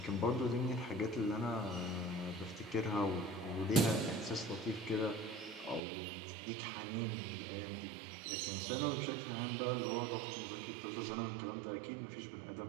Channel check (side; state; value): left; drops out; at 5.8 s